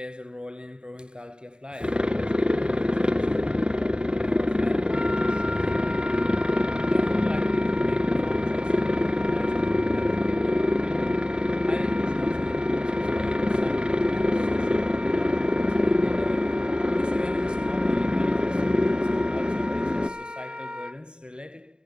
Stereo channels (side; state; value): left; late; 0.049 ms